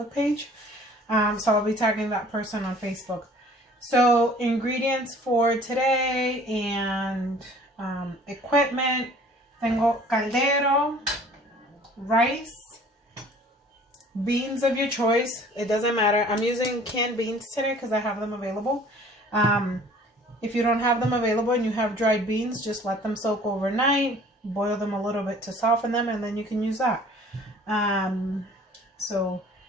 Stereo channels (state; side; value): normal; both; correlation 0.51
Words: page. So I'll be tagging that person on Facebook. So ingredients for today and equipment. Tengo caldero, rice, beans of your choice. It doesn't matter. I'm using canned beans today because I have them available. If you don't have them available and you have dried beans, just let them soak overnight. Boil them a little bit to soften them, and then you can use that. So